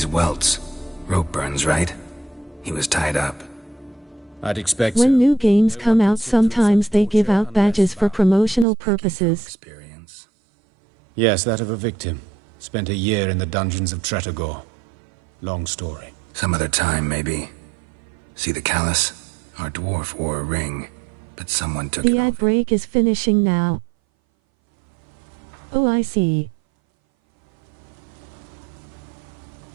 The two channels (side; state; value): left; drops out; at 8.7 s